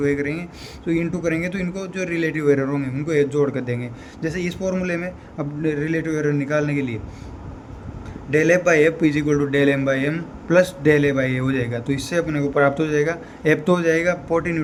ए करेंगे, तो इंटू करेंगे तो इनको जो रिलेटिव एरर होंगे उनको एक जोड़ कर देंगे। जैसे इस फॉर्मूले में अब रिलेटिव एरर निकालने के लिए del F by F is equal to del M by M plus del A by A हो जाएगा, तो इससे अपने को प्राप्त हो जाएगा एफ तो हो जाएगा 40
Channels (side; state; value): both; identical; correlation 1.00